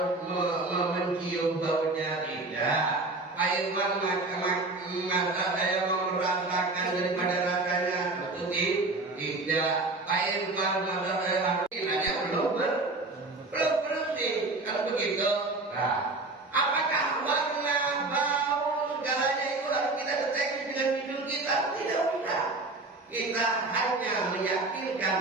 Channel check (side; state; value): left; quieter; 3.2 dB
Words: mencium baunya tidak. Pak Irwan masa saya mau merasakan daripada rasanya tentu tidak. Pak Irwan masa saya harus nanya belum bersih. Kalau begitu, nah, apakah warna, bau, segalanya itu harus kita deteksi dengan hidung kita? Tidak usah. Kita hanya